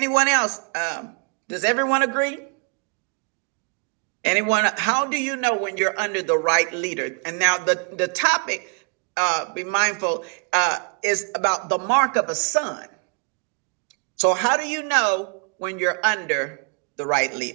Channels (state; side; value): quieter; left; 37.5 dB